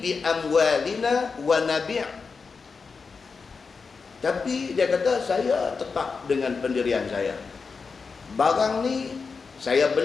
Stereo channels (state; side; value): quieter; right; 4.9 dB